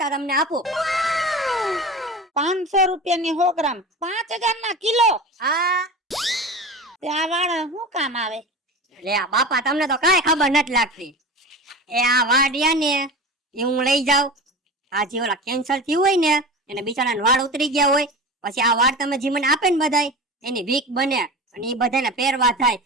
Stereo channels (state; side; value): normal; both; correlation 0.31